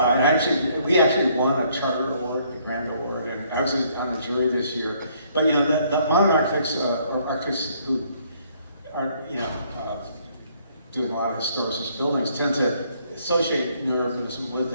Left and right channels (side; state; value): both; inverted; correlation -0.66